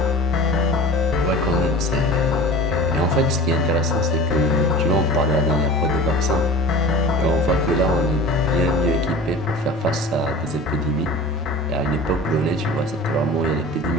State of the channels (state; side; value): normal; both; correlation 0.38